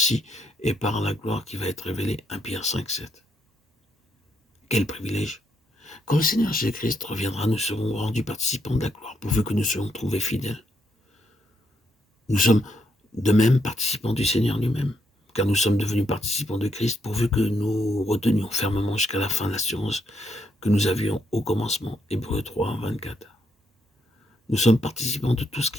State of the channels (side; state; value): both; normal; correlation 0.77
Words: est par la gloire qui va être révélée. 1 Pierre 5, 7. Quel privilège! Quand le Seigneur Jésus-Christ reviendra, nous serons rendus participants de la gloire, pourvu que nous soyons trouvés fidèles. Nous sommes de même participants du Seigneur lui-même, car nous sommes devenus participants de Christ, pourvu que nous retenions fermement jusqu'à la fin l'assurance que nous avions au commencement. Hébreux 3, 24. Nous sommes participants de tout ce